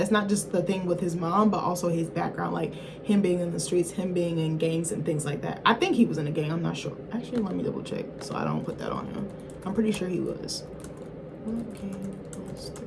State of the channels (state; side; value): identical; both; correlation 1.00